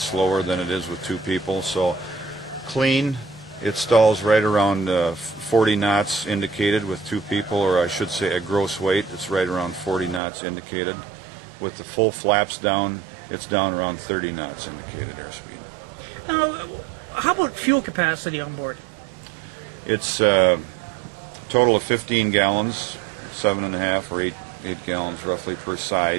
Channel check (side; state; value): left; drops out; at 10.2 s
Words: slower than it is with 2 people, so clean it stalls right around 40 knots indicated with 2 people, or I should say at gross weight it's right around 40 knots indicated. With the full flaps down, it's down around 30 knots indicated airspeed. Now, how about fuel capacity on board? It's a total of 15 gallons, 7.5 or 8 gallons roughly per